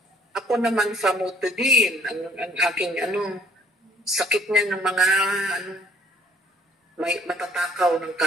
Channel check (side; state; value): both; normal; correlation 0.59